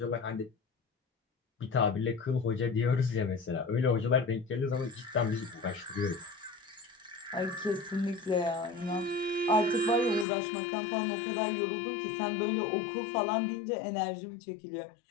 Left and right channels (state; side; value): drops out; right; at 10.2 s